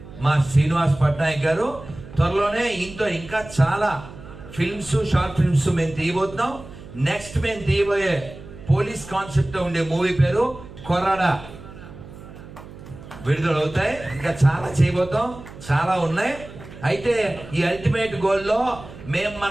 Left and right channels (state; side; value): noise; right; hum, 16 dB below the sound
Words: మా శ్రీనివాస్ పట్నాయక్ గారు. త్వరలోనే ఇంకా చాలా ఫిల్మ్స్, షార్ట్ ఫిల్మ్స్ మేము తీయబోతున్నాం. నెక్స్ట్ మేము తీయబోయే పోలీస్ కాన్సెప్ట్ ఉండే మూవీ పేరు కొరాడా విడుదలవుతాయి. ఇంకా చాలా చేయబోతాం, చాలా ఉన్నాయి. అయితే ఈ అల్టిమేట్ గోల్లో మేము